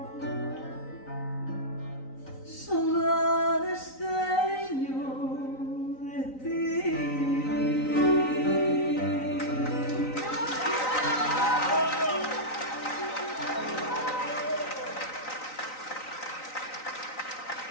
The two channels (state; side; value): late; right; 3.9 ms